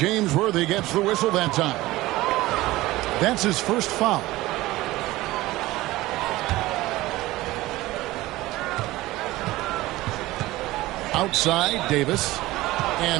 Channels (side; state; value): left; quieter; 18.2 dB